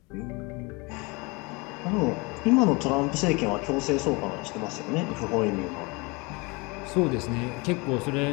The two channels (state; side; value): quieter; right; 27.3 dB